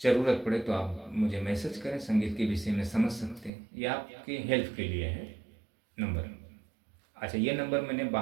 ज़रूरत पड़े तो आप मुझे मैसेज करें, संगीत के विषय में समझ सकते हैं, ये आपके हेल्प के लिए है नंबर। अच्छा, ये नंबर मैंने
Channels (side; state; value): left; drops out; at 3.5 s